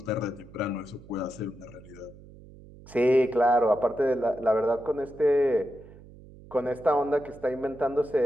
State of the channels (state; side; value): noise; right; hum, 20 dB below the sound